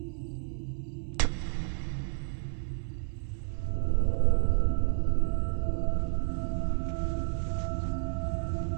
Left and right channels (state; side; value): silent; left; 57 dB below the other